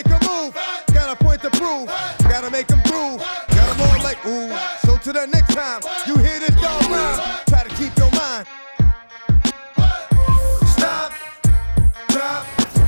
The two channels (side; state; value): both; inverted; correlation -1.00